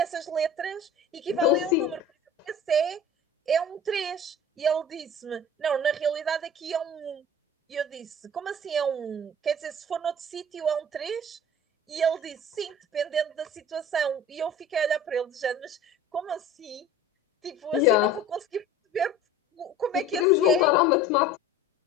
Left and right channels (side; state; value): both; normal; correlation 0.42